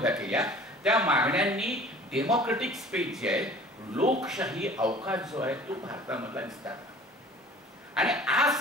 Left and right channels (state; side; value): normal; both; correlation 0.47